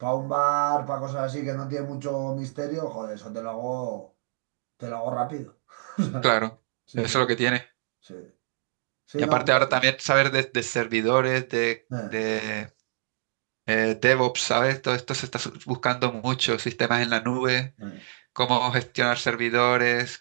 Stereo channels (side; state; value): left; silent; digital silence